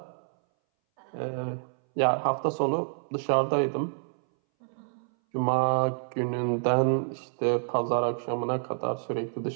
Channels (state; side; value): silent; left; 59 dB below the other